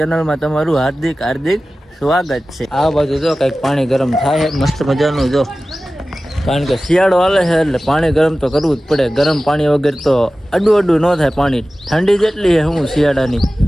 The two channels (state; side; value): normal; both; correlation 0.96